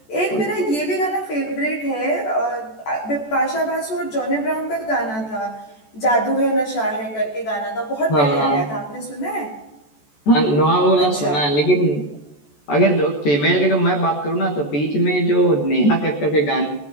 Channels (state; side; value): late; right; 14 ms